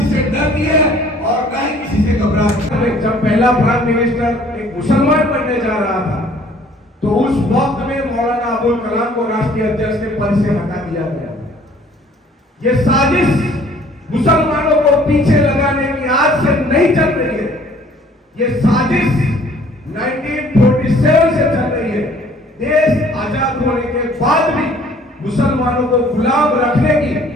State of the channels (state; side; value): normal; both; correlation 0.56